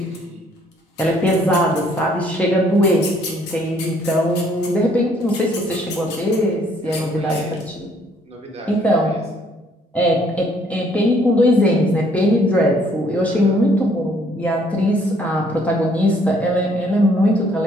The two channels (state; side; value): normal; both; correlation 0.64